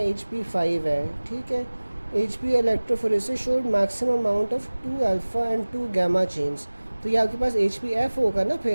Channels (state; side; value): inverted; both; correlation -1.00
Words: HP 5 है, ठीक है। HP electrophoresis showed maximum amount of 2 alpha and 2 gamma chains। तो ये आपके पास HbF होगा ना